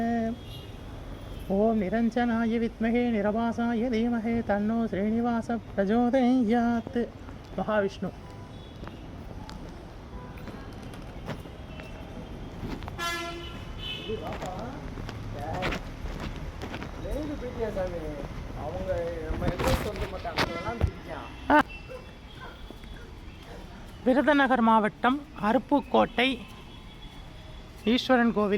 ஓம் நிரஞ்சனாய வித்மஹே நிரபாசாய தீமஹே தன்னோ ஸ்ரீனிவாச பிரச்சோதயாத். மகாவிஷ்ணு. அவங்க நம்ம சொல்ல மாட்டாங்க. விருதுநகர் மாவட்டம் அருப்புக்கோட்டை ஈஸ்வரன்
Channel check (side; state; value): both; identical; correlation 1.00